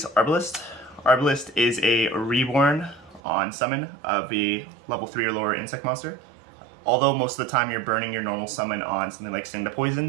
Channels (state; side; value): drops out; left; at 3.2 s